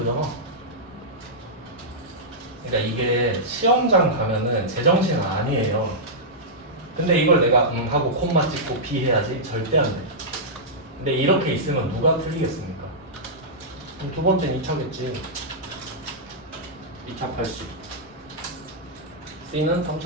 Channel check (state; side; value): normal; both; correlation -0.11